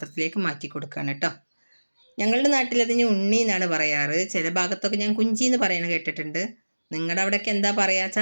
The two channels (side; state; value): both; inverted; correlation -1.00